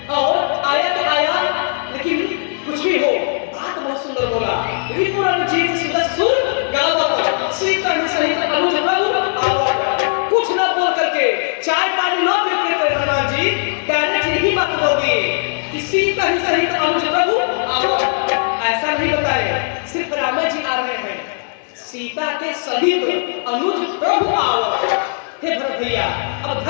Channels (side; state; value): right; silent; digital silence